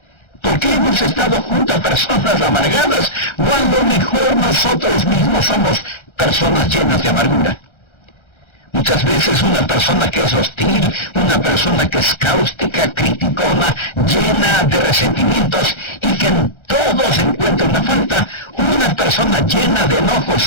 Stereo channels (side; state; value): right; late; 1.3 ms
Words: Porque hemos estado junto a personas amargadas, o a lo mejor nosotros mismos somos personas llenas de amargura. Muchas veces una persona que es hostil, una persona que es cáustica, criticona, llena de resentimientos y que en todo se encuentra una falta, una persona llena de